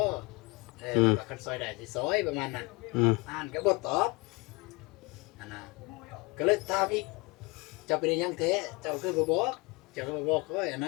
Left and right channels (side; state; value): right; quieter; 25.8 dB